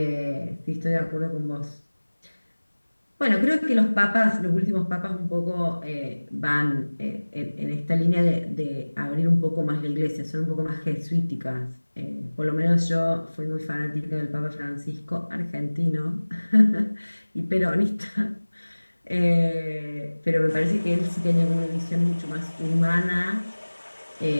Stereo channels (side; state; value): both; inverted; correlation -1.00